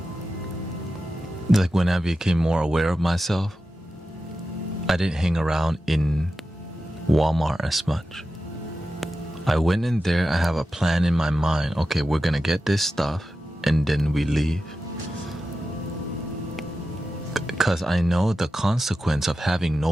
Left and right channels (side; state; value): both; normal; correlation 0.92